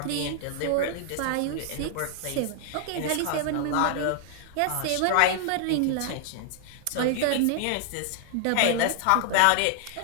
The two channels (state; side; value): different; both; correlation 0.00